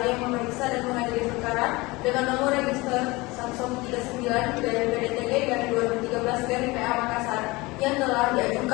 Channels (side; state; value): right; quieter; 22.8 dB